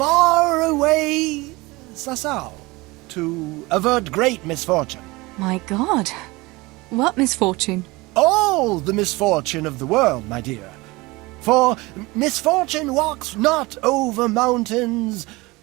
away Sasau to avert great misfortune. My God, what misfortune? All the misfortune of the world, my dear. For misfortune walks not over mountains,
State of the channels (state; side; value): quieter; left; 22.7 dB